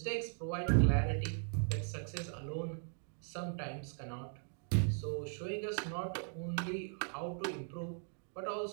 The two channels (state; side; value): silent; left; 52 dB below the other